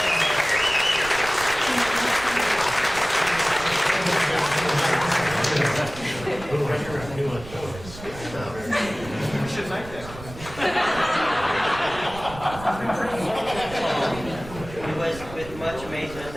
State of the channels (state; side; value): noise; right; rumble, 15 dB below the sound